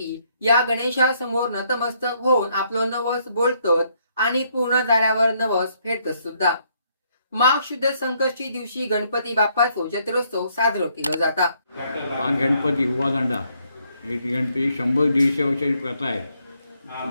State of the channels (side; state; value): both; inverted; correlation -0.71